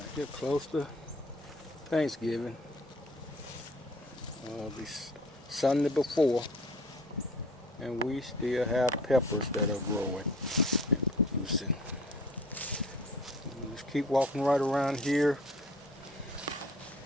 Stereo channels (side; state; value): both; normal; correlation 0.49